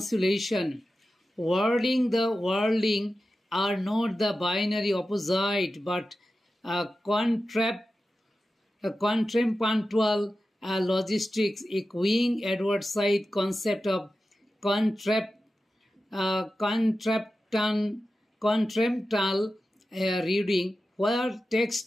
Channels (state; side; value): normal; both; correlation 0.93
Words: Wording the worlding are not the binary opposite but contrapuntual logistics, echoing Edward Said's concept of contrapuntal reading, where